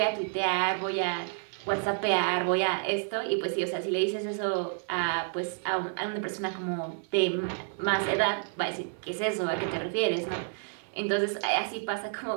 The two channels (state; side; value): silent; left; 58 dB below the other